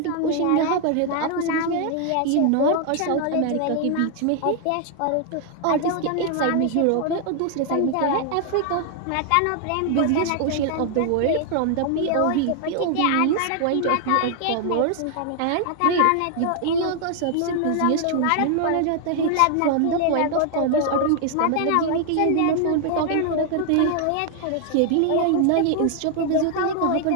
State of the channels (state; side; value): different; both; correlation 0.00